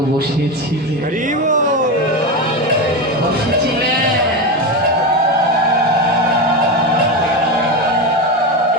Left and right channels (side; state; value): both; normal; correlation 0.17